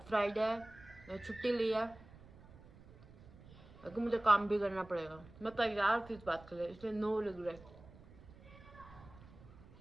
फ्राइडे है, मैं छुट्टी ली है, लेकिन मुझे काम भी करना पड़ेगा। मैं तैयार थी इस बात के लिए, इसलिए no regret.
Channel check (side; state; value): right; noise; rumble, 20 dB below the sound